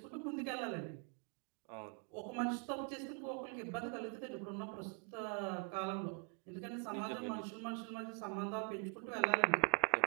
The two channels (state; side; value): quieter; left; 39.5 dB